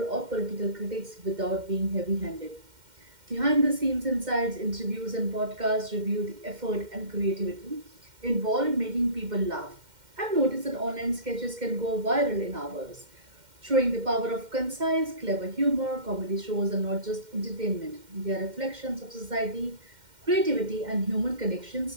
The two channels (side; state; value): left; late; 2.1 ms